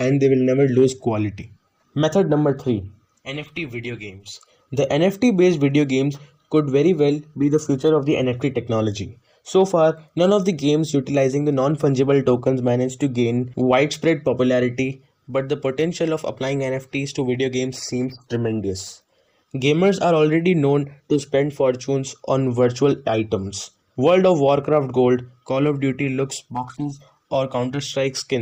they will never lose quality. Method number 3: NFT video games. The NFT based video games could very well be the future of the NFT technology. So far, none of the games utilizing the non fungible tokens managed to gain widespread popularity, but the potential of applying NFTs to video games seems tremendous. Gamers are already known to spend fortunes on virtual items. World of Warcraft gold, Call of Duty looks boxes, or Counter Strike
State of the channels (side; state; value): both; identical; correlation 1.00